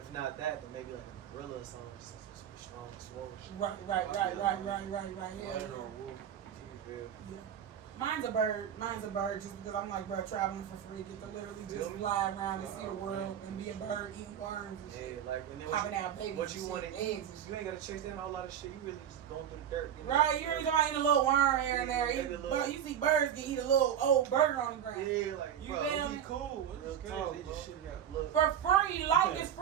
not that, then maybe like a gorilla or something, just super strong and swole. Right. Yeah. Lion or wolf. You feel? Yeah. Mine's a bird. Mine's a bird just because I'm like, bro, traveling for free. Get to literally just fly around and see the world and be a bird eating worms and shit. Yeah, like and then Popping out babies. what you and want shit, to eggs eat, and shit. you ain't gotta chase down a whole lot of shit. You really just going through the dirt. Right, you ain't gonna eat a little worm here and there. Maybe a little- You see birds can eat a little old burger on the ground. Yeah, like You bro, feel It'd me? be cool. Real It's talk, crazy. They just shit it out. Look, For free, life is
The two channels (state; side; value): quieter; left; 9.4 dB